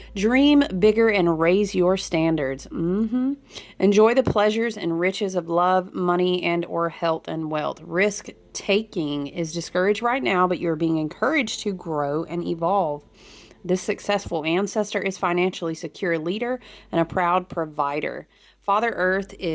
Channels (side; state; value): both; identical; correlation 1.00